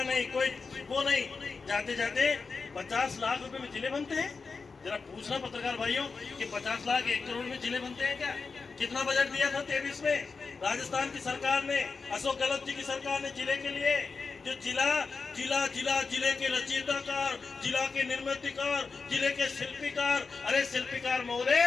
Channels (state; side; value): quieter; right; 4.6 dB